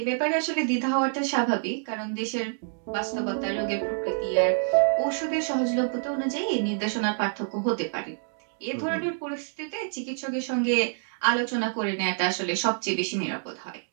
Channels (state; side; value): silent; left; digital silence